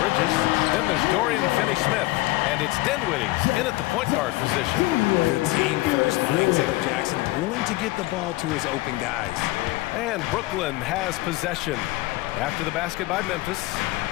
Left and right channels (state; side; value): quieter; right; 19.4 dB